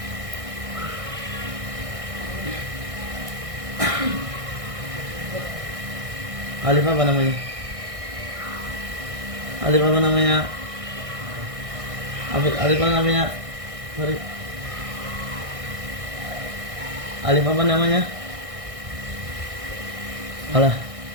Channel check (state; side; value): late; left; 1.6 ms